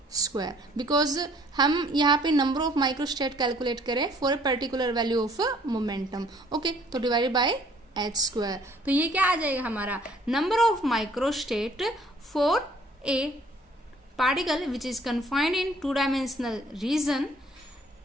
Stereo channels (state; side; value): normal; both; correlation 0.58